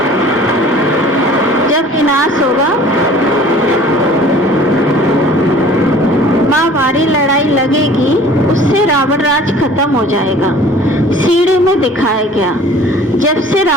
जब विनाश होगा, महाभारी लड़ाई लगेगी, उससे रावण राज खत्म हो जाएगा। सीढ़ी में दिखाया गया, जब से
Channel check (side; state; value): both; normal; correlation 0.48